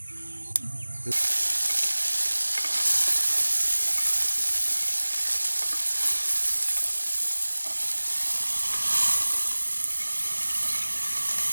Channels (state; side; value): inverted; both; correlation -1.00